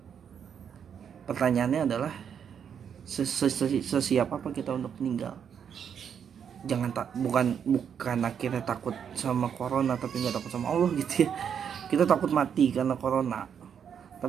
pertanyaannya adalah sesiap apa kita untuk meninggal. Jangan bukan akhirnya takut sama corona tapi nggak takut sama Allah gitu ya. Kita takut mati karena corona,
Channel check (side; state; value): left; quieter; 7.8 dB